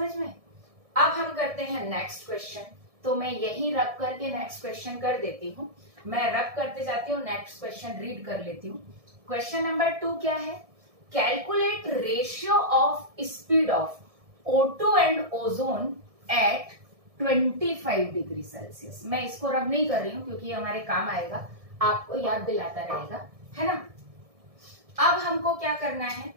में। अब हम करते हैं नेक्स्ट क्वेश्चन। तो मैं यहीं रख करके नेक्स्ट क्वेश्चन कर देती हूँ, मैं रख करते जाती हूँ, नेक्स्ट क्वेश्चन रीड कर लेती हूँ। क्वेश्चन नंबर 2 क्या है, calculate ratio of speed of O2 and ozone at 25 degree Celsius. मैं इसको रब नहीं कर रही हूँ क्योंकि हमारे काम आएगा, आपको याद दिलाता रहेगा, है ना। अब हमको क्या करना है,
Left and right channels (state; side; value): late; left; 1.7 ms